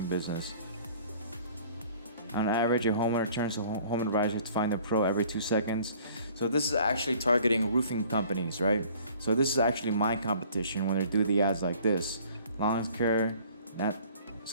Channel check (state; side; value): inverted; both; correlation -0.53